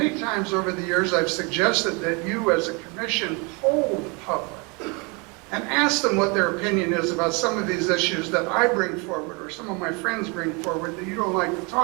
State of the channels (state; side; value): quieter; left; 30.3 dB